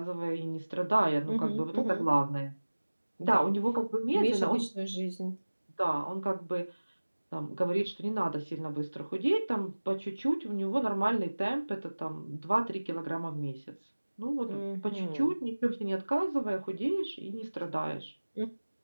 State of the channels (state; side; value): inverted; both; correlation -1.00